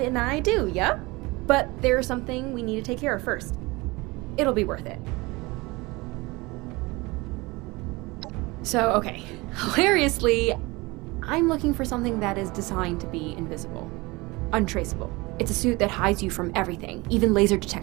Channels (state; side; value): quieter; left; 23.4 dB